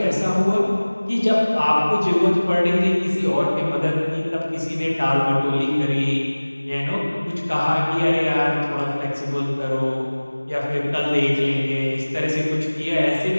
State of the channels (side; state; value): both; inverted; correlation -1.00